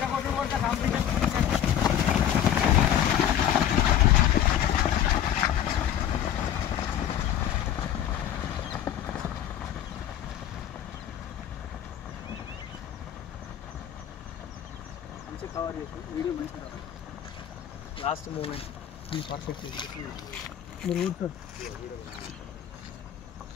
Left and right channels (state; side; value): quieter; right; 10.4 dB